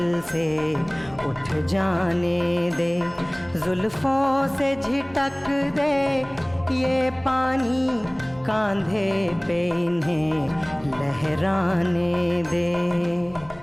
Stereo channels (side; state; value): right; noise; hum, 24 dB below the sound